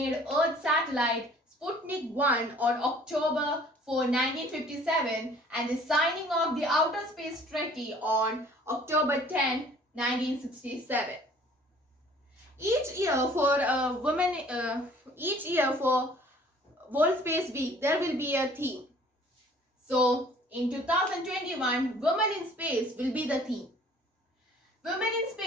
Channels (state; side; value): normal; both; correlation 0.53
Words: Earth satellite Sputnik 1 on October 4, 1957 and the signing of the Outer Space Treaty on October 10, 1967. Each year for World Space Week, there will be a theme. So, in 2021, Women in Space will be the theme. Women in